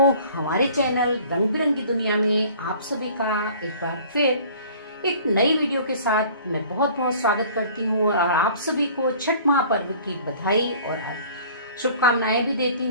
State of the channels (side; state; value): both; inverted; correlation -0.49